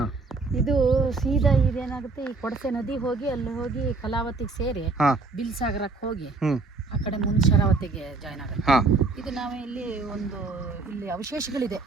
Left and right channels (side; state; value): left; quieter; 3.8 dB